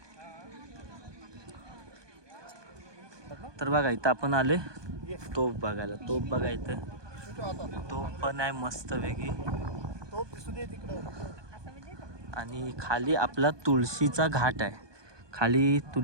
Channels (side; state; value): left; late; 1.2 ms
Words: तर बघा इथं आपण आले तोफ बघायला, तोफ बघा इथं तोफ पण आहे मस्त वेगळी. आणि खाली आपला तुळशीचा घाट आहे, खाली